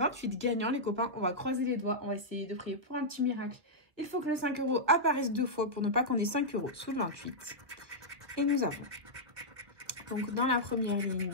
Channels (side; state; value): left; late; 1.7 ms